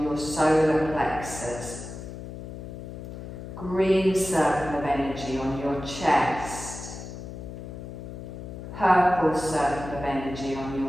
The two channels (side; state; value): left; noise; hum, 10 dB below the sound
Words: your solar plexus, green circle of energy on your chest, purple circle of energy on